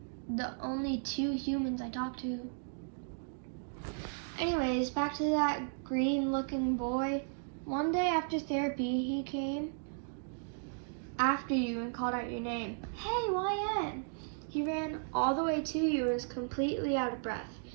the only two humans I talk to. Anyways, back to that green-looking boy. One day after therapy, he came after you and called out your name. Hey, Wyatt! He ran all the way to you and was completely out of breath.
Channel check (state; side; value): silent; left; digital silence